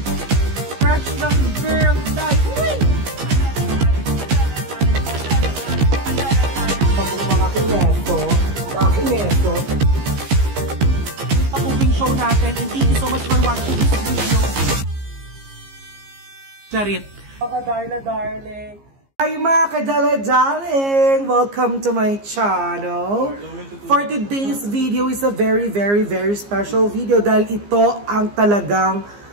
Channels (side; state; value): left; late; 15 ms